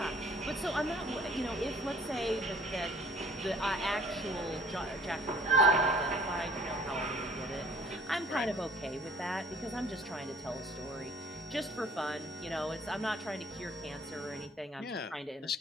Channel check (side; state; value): both; normal; correlation 0.54